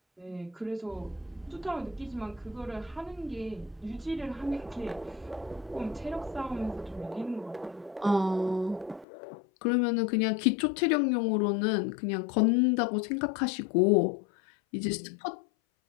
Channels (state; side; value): drops out; right; at 9.1 s